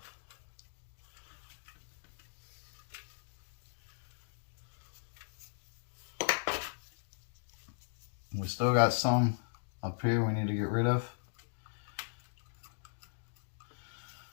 We still got some up here we need to get rid of.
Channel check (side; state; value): right; silent; digital silence